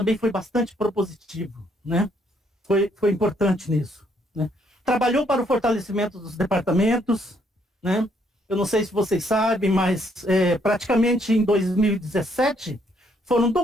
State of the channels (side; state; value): both; normal; correlation 0.70